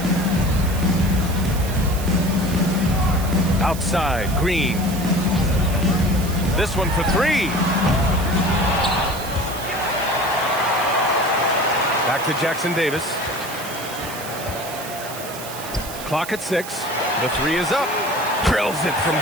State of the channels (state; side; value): noise; right; hiss, 12 dB below the sound